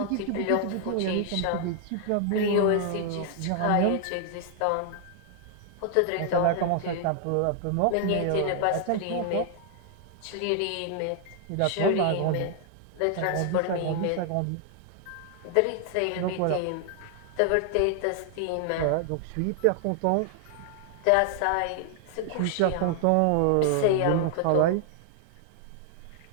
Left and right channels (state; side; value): different; both; correlation 0.00